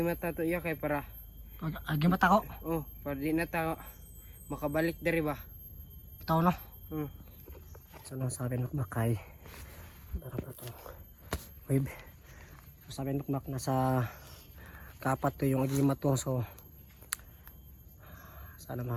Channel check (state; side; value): identical; both; correlation 1.00